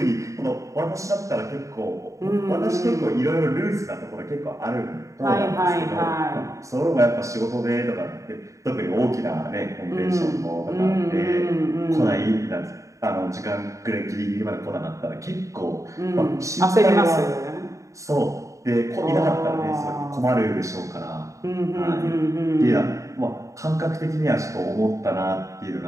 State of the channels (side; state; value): left; late; 0.15 ms